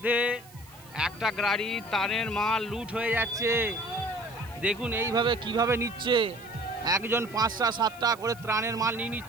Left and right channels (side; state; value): right; noise; hiss, 24 dB below the sound